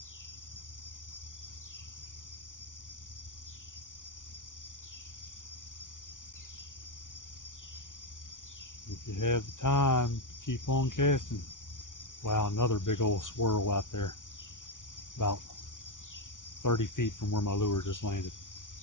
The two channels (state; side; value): late; right; 0.87 ms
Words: If you have the time, keep on casting. Wow, another big old swirl out there. About 30 feet from where my lure just landed.